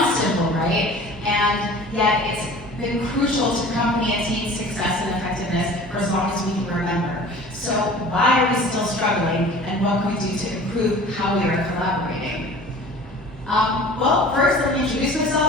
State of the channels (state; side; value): normal; both; correlation 0.43